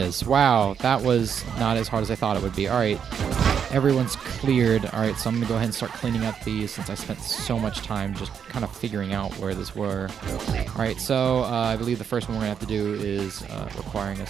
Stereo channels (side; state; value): left; quieter; 7.6 dB